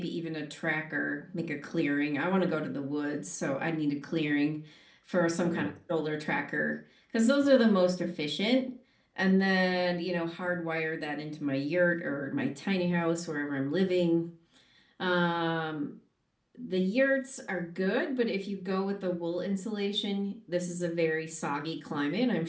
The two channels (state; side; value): identical; both; correlation 1.00